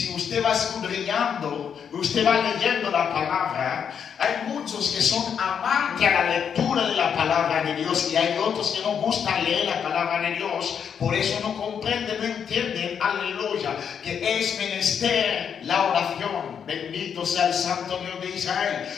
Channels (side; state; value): right; quieter; 7.5 dB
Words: usted va escudriñando, usted va leyendo la palabra, hay muchos que son amantes a la lectura de la palabra de Dios y hay otros que no gustan leer la palabra de Dios, por eso no comprenden, no entienden, aleluya, que es menester la oración. Bendito sea el Santo Dios de Israel,